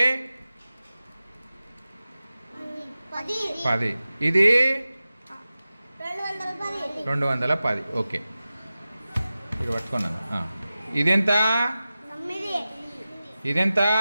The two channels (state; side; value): inverted; both; correlation -0.95